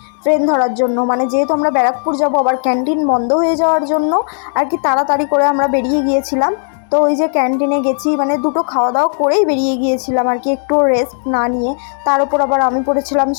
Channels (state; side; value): silent; right; digital silence